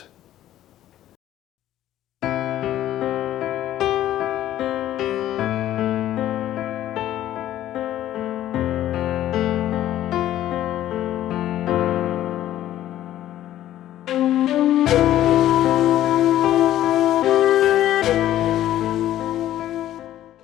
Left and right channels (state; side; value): quieter; right; 12.9 dB